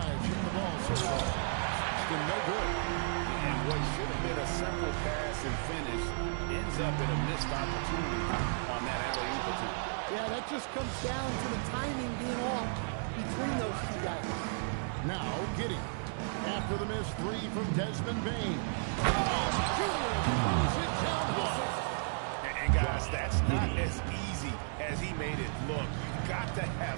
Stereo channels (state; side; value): silent; left; digital silence